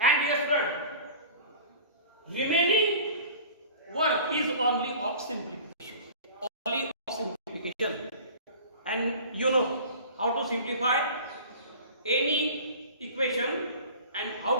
dear friend, remaining work is only of simplification. Only of simplification. And you know how to simplify any equation and how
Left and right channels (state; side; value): inverted; both; correlation -0.41